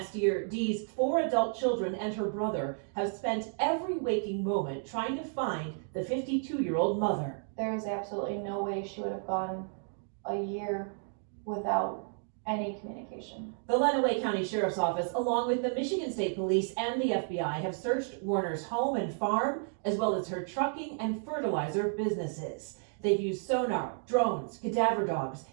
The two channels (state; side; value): silent; left; 56 dB below the other